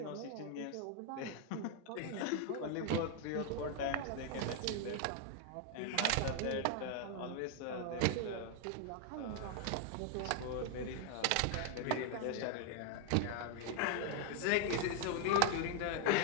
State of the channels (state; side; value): different; both; correlation 0.00